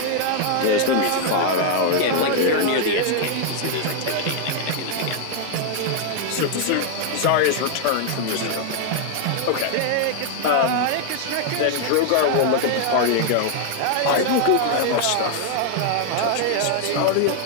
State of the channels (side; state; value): both; different; correlation 0.00